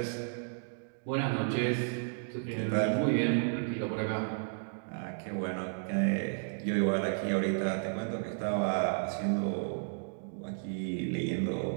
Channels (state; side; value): silent; left; digital silence